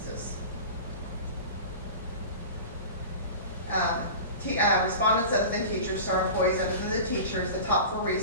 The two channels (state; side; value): inverted; both; correlation -0.33